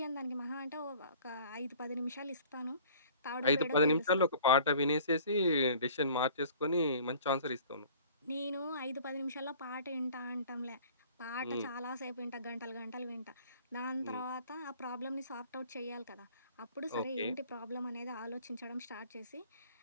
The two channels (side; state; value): both; inverted; correlation -0.49